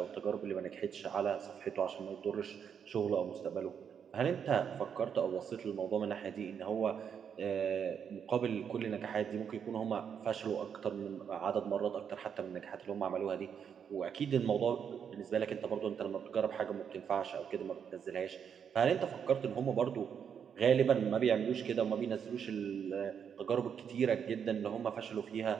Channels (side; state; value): left; quieter; 7.6 dB